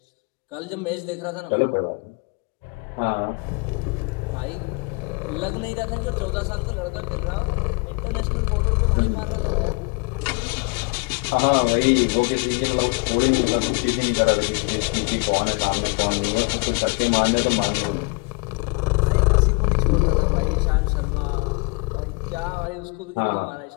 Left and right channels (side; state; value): right; quieter; 31.8 dB